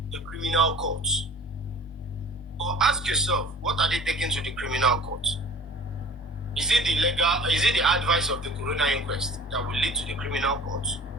the criminal courts. Or ask yourself, what are they taking to the criminal court? Is it the advice of the corona inquest that will lead to the criminal court?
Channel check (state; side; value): normal; both; correlation 0.45